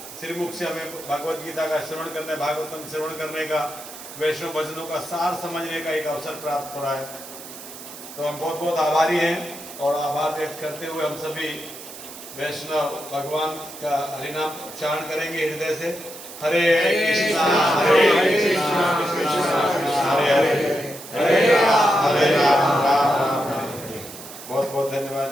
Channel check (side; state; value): right; noise; hiss, 14 dB below the sound